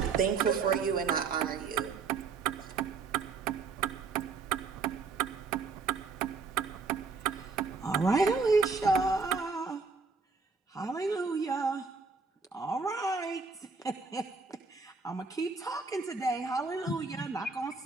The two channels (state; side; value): quieter; left; 4.6 dB